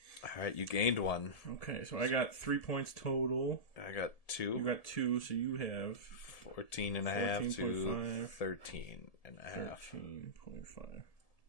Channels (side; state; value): right; late; 1.7 ms